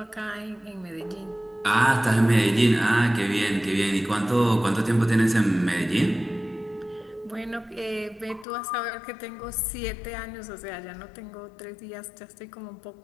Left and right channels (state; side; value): drops out; right; at 8.5 s